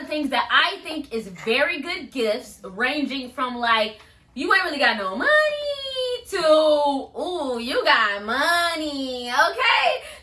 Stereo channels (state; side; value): identical; both; correlation 1.00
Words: the things that I think is very good gifts, ranging from, like, you ain't really got no money to, ooh, you got money, okay?